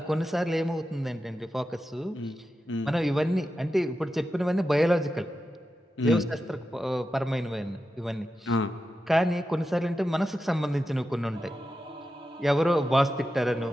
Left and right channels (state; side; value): normal; both; correlation 0.90